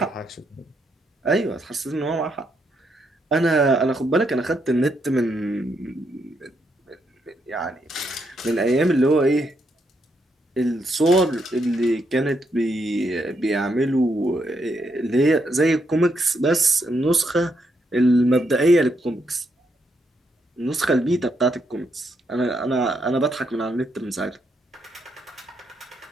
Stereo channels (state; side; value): normal; both; correlation 0.78